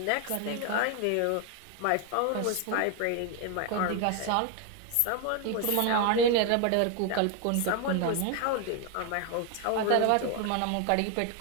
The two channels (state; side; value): different; both; correlation 0.01